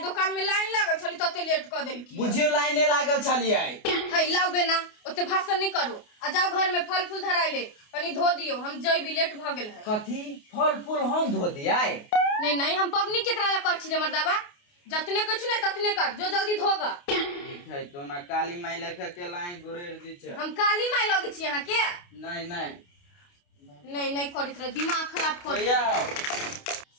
दुकान में लाइन लागल छली तते लेट क देल की बुझियो लाइन नहीं लागल छलिए। है लाओ बेना ओते भाषण नहीं करू, आ जाओ घर में फल फूल धराइले कनी धो दियो, हम जइबी लेट भ गेल है। कथी फल फूल हम धो दियाई? नहीं नहीं हम पबनी केकरा ला कर छी रे मर्दावा, जतने कुछ नहीं ततने कर, जो जल्दी धोगा। ठीक है तो ना काली माई लेखा के लाई गुरेर दी छ। हम काली माई लगे छी यहां के? नहीं नहीं नहीं नहीं करित रहे, दिमाग खराब कर भैया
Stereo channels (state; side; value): late; right; 28 ms